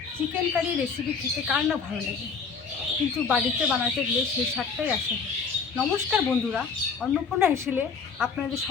চিকেন কারি রেসিপি খেতে কার না ভালো লাগে, কিন্তু বাড়িতে বানাতে গেলে সেই স্বাদটাই আসে না। নমস্কার বন্ধুরা, অন্নপূর্ণা হেসেলে আপনাদের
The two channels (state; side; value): quieter; right; 5.5 dB